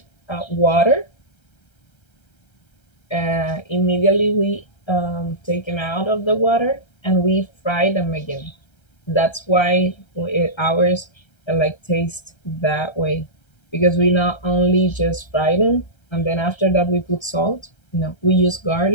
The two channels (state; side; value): late; right; 1.3 ms